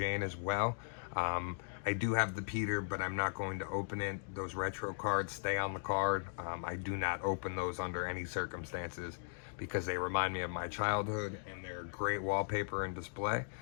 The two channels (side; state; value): right; silent; digital silence